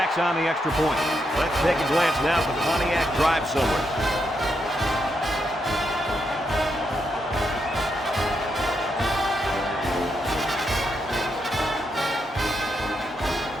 on the extra point. Let's take a glance now at the Pontiac drive somewhere.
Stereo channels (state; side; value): normal; both; correlation 0.81